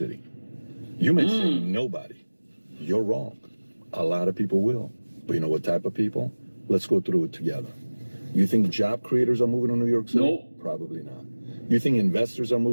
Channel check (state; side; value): inverted; both; correlation -1.00